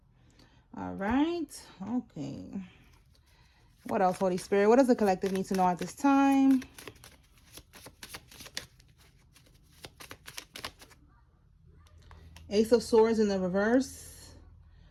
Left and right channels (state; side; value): identical; both; correlation 1.00